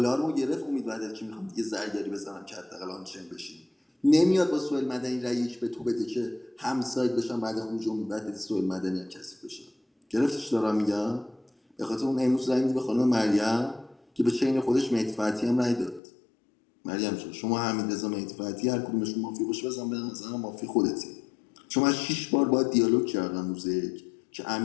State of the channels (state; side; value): drops out; right; at 16.0 s